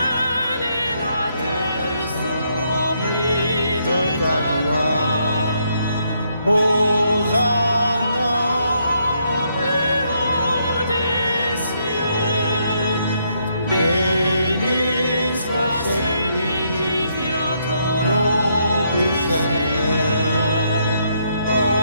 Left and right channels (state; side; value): inverted; both; correlation -0.74